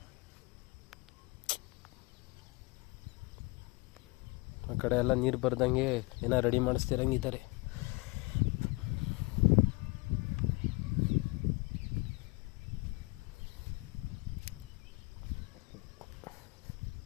ಆ ಕಡೆ ಎಲ್ಲ ನೀರು ಬರ್ದಂಗೆ ಏನೋ ರೆಡಿ ಮಾಡಿಸ್ತಿರಂಗಿದ್ದಾರೆ.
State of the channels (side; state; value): right; quieter; 26.2 dB